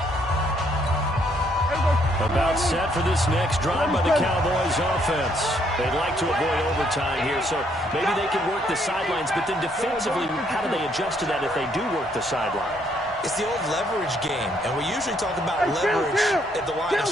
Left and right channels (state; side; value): normal; both; correlation 0.70